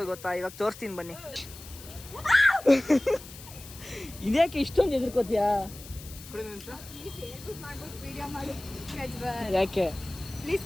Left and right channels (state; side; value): noise; left; hiss, 16 dB below the sound